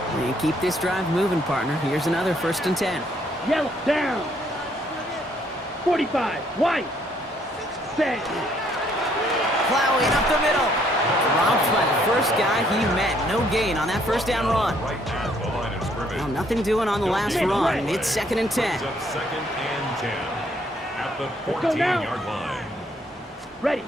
And keep this drive moving, partner. Here's another 1st and 10. Yellow, down. 45, white. Set. Plowing up the middle. Dropped by the first guy he met. No gain on that 1st down run. Right at the line of scrimmage. Well, nothing doing on the last run. It's 2nd and 10. Brings up 2nd and 10 at the 14-yard line. Ready.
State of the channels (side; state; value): both; normal; correlation 0.67